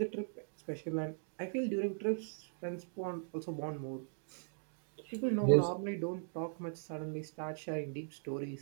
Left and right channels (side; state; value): left; silent; digital silence